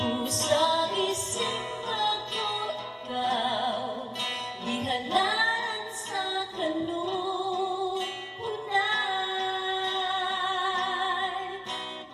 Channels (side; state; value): both; identical; correlation 1.00